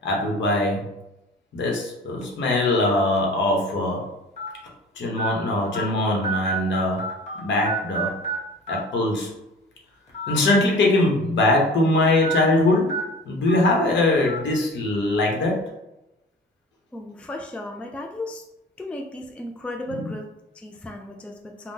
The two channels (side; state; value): both; normal; correlation 0.42